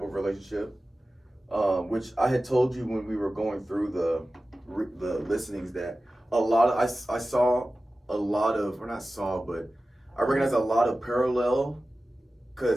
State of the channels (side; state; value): both; normal; correlation 0.95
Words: of relationship. Which I had told you when we were going through the listenings that a lot of I saw a lot of, or not saw, but I recognize a lot of parallel,